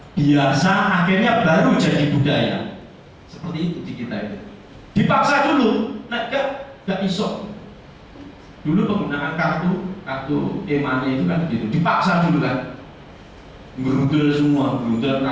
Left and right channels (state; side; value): identical; both; correlation 1.00